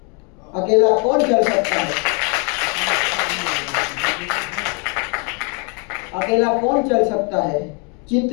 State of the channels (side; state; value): right; quieter; 35.1 dB